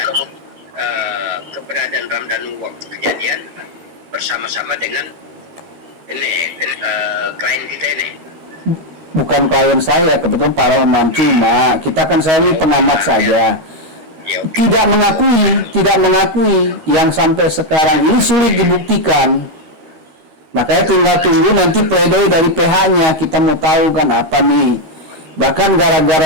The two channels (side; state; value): left; late; 13 ms